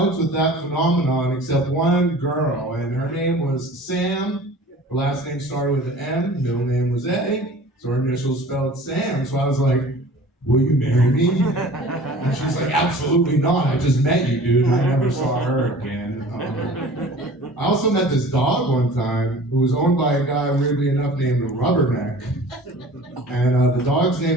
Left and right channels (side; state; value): both; normal; correlation 0.44